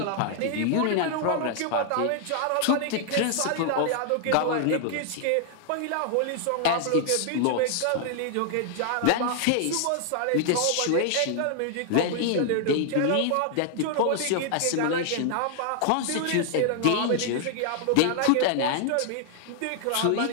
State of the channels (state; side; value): different; both; correlation 0.00